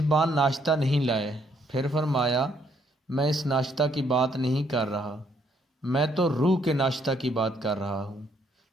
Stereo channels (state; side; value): normal; both; correlation 0.70